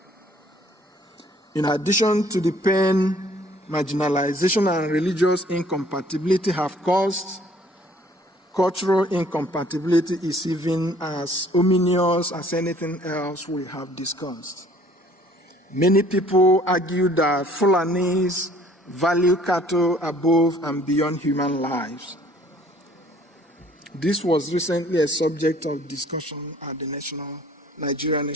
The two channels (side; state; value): both; normal; correlation 0.57